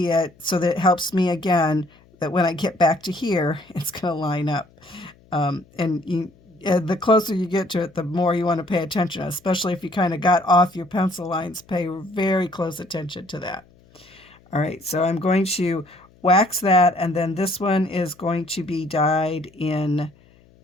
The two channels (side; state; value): left; noise; hum, 29 dB below the sound